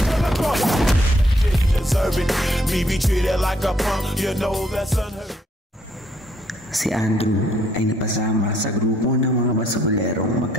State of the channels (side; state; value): both; normal; correlation 0.68